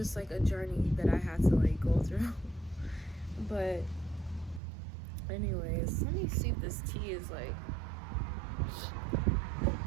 like a journey that I had to, like, go through. But anyways, let me see if this tea is, like,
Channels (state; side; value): drops out; left; at 4.6 s